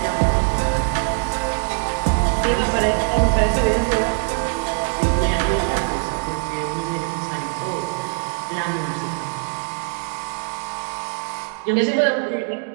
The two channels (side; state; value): left; silent; digital silence